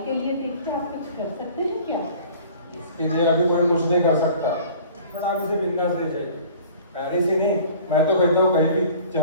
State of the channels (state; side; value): inverted; both; correlation -0.47